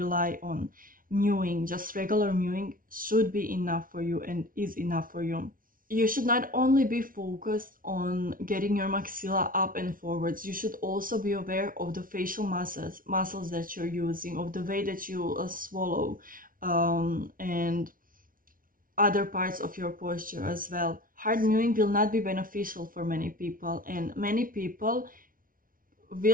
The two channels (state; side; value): late; left; 0.40 ms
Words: on. Mewing, just regular mewing, should be enough for you and is enough for you. You should not only be focused on getting your maxilla up and forwards, you should also be aware of the facial muscles that you're using, of the way that you swallow, and other parts of your posture as well. Hard mewing will not be beneficial for many people, and many people